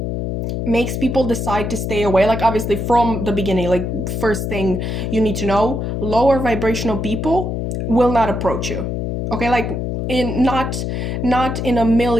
makes people decide to stay away, like obviously from the beginning, like first thing you need to know, lower vibrational people will not approach you. Okay, like in not in a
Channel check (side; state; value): left; noise; hum, 2 dB below the sound